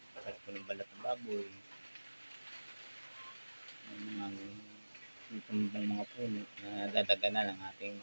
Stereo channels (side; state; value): both; inverted; correlation -1.00